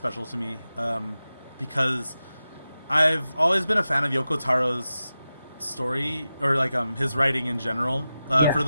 to me because I've always been a fan of Yoko Taro's story, or like his writing in general. For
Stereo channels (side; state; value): both; inverted; correlation -0.93